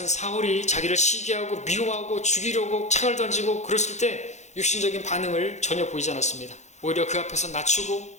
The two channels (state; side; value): late; right; 0.33 ms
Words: 사울이 자기를 시기하고 미워하고 죽이려고 창을 던지고 그랬을 때 육신적인 반응을 전혀 보이지 않았습니다. 오히려 그 앞에서 낮추고